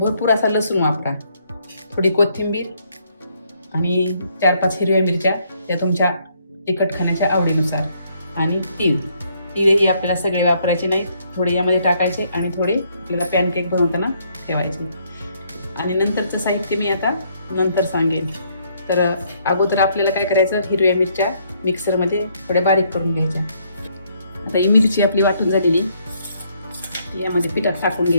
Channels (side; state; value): both; inverted; correlation -0.70